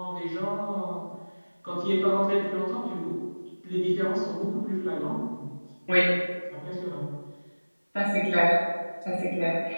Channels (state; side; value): inverted; both; correlation -1.00